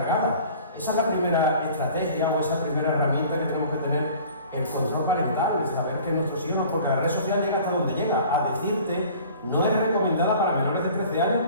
Esa es la primera estrategia o esa primera herramienta que tenemos que tener, el control parental, saber que nuestros hijos, porque la red social llega hasta donde llega, a decirte no es recomendada para menores de 13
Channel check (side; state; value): both; inverted; correlation -0.47